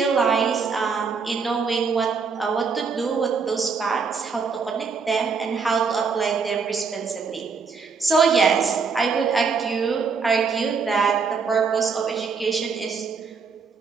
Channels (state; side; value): quieter; left; 5.3 dB